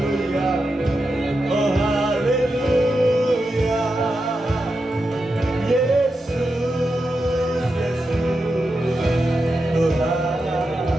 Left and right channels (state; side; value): normal; both; correlation 0.88